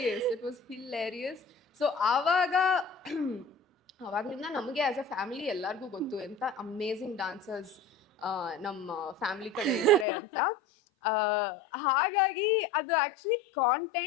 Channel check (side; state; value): right; drops out; at 10.1 s